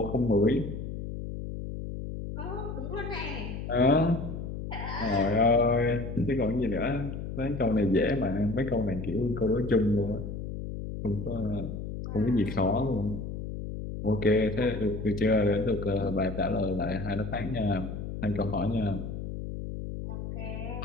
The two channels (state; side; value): noise; left; hum, 6 dB below the sound